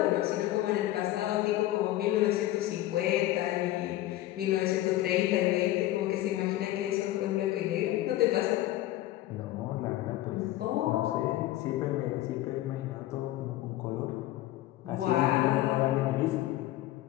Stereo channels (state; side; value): quieter; right; 15.1 dB